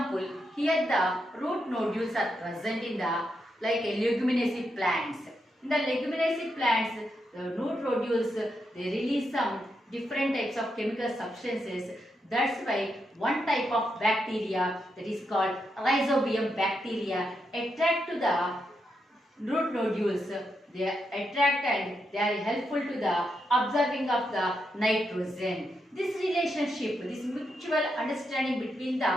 here the root nodules are present in the like leguminaceous plants. In the leguminaceous plants, the root nodules they release some different types of chemical substances. That's why one type of bacteria that is called rhizobium bacteria attract to the root nodules. They attract and they are helpful to the absorbing of the nitrogen. This relationship, this mutual understanding between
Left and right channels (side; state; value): both; normal; correlation 0.83